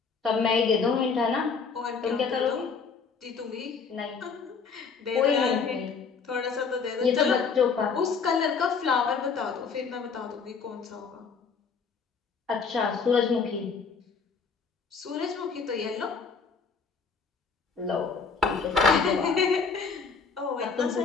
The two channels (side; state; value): right; quieter; 5.3 dB